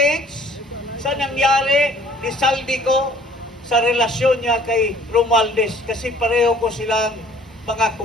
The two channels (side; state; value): both; normal; correlation 0.55